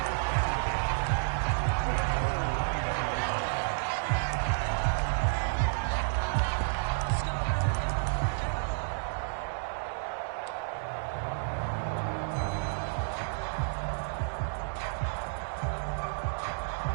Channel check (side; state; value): left; silent; digital silence